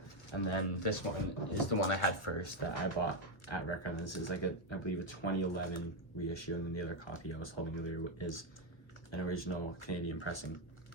and then this one is the one I had first that I bought at Record. This is like I believe a 2011 reissue, and then the other copy I was holding earlier is an original Canadian pressing.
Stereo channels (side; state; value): right; late; 1.2 ms